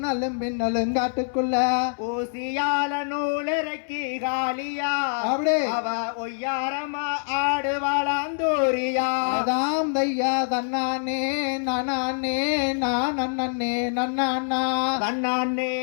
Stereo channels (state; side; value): silent; right; 61 dB below the other